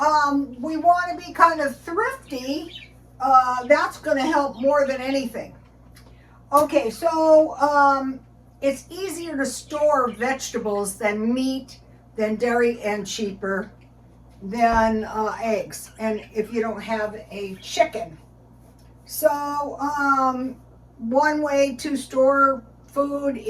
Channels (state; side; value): identical; both; correlation 1.00